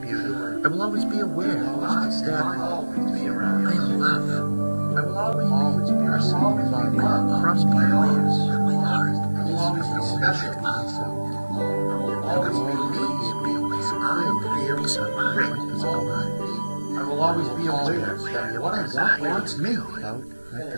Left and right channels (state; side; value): inverted; both; correlation -1.00